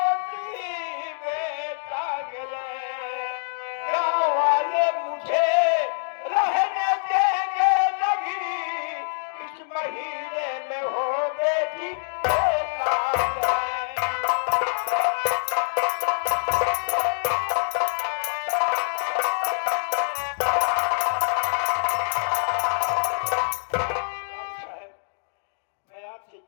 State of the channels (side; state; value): right; silent; digital silence